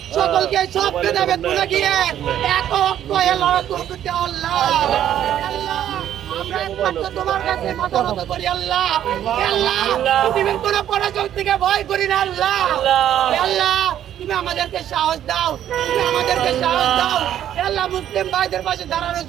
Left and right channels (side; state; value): left; quieter; 10.9 dB